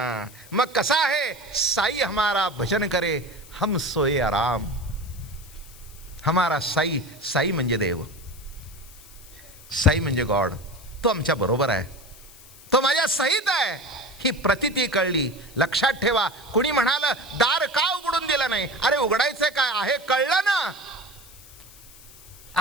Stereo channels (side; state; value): left; noise; hiss, 21 dB below the sound